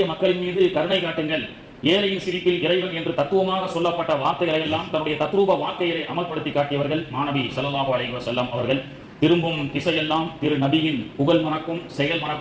மக்களின் மீது கருணை காட்டுங்கள், ஏழையின் சிரிப்பில் இறைவன் என்று தத்துவமாக சொல்லப்பட்ட வார்த்தைகளை எல்லாம் தன்னுடைய தத்ரூப வாழ்க்கையை அமல்படுத்தி காட்டியவர்கள் மாநபி ஸல்லல்லாஹு அலைஹி வஸல்லம் அவர்கள். திரும்பும் திசையெல்லாம் திரு நபியின் புகழ் மணக்கும் செயல்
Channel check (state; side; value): identical; both; correlation 1.00